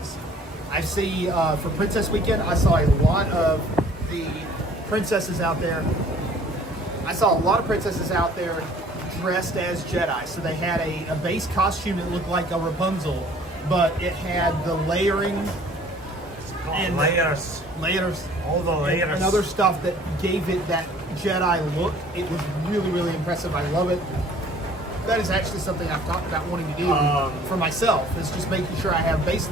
I see for Princess Weekend, I saw a lot of the princesses out there. I saw a lot of princesses out there dressed as Jedi. So they had a base costume that looked like a Rapunzel, but it had the layering and layers, all the layers, and other stuff that gave it that Jedi look. It was really, really impressive. I love it. That is actually something I've talked about wanting to do for myself, is just making sure I have base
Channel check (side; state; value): both; normal; correlation 0.54